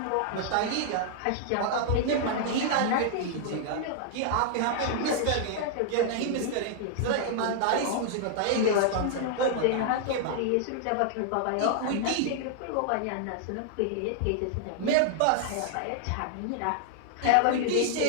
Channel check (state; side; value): different; both; correlation -0.01